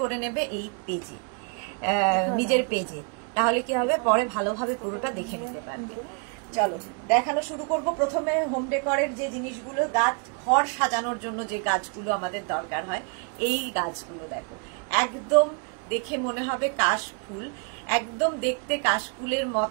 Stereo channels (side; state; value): left; quieter; 37.3 dB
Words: নেবে এই পেজে, নিজের পেজে, তাহলে কি হবে পরে ভালোভাবে পুরোটা দেখে নিতে পারবে। চলো দেখানো শুরু করব। প্রথমে হোম ডেকরের যে জিনিসগুলো, গাছ, ঘর সাজানোর জন্য যে গাছগুলো আমাদের দরকার হয়, এই গাছগুলো দেখো, একদম দেখে মনে হবে কাশফুল, একদম দেখতে কাশফুলের